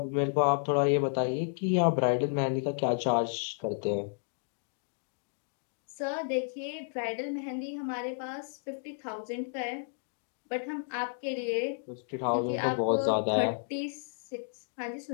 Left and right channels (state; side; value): silent; right; digital silence